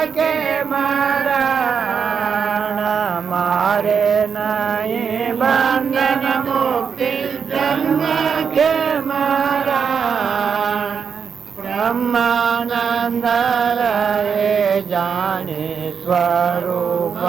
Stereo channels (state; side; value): quieter; left; 6.4 dB